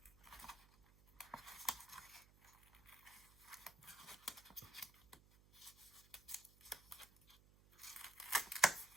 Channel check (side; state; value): right; noise; hum, 25 dB below the sound